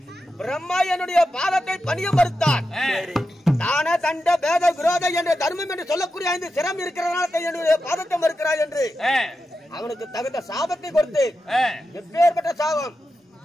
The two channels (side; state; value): both; normal; correlation 0.89